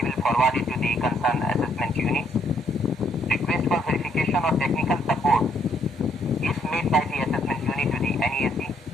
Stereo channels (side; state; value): both; normal; correlation 0.69